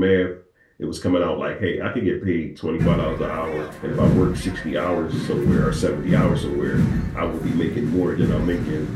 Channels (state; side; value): identical; both; correlation 1.00